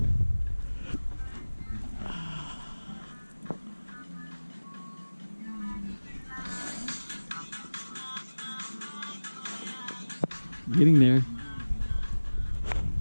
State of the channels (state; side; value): inverted; both; correlation -1.00